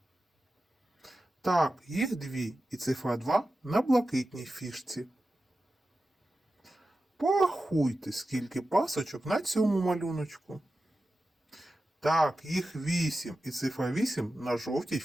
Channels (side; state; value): both; normal; correlation 0.93